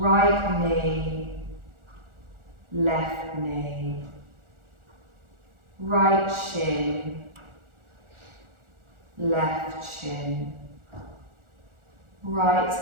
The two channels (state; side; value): late; left; 1.4 ms